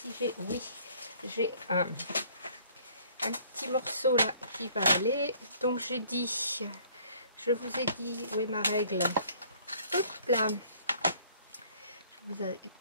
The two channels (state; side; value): inverted; both; correlation -0.58